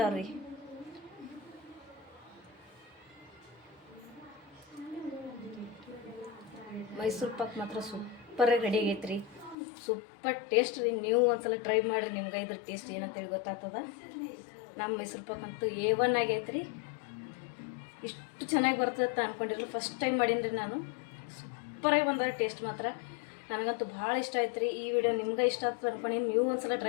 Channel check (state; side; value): drops out; right; at 9.6 s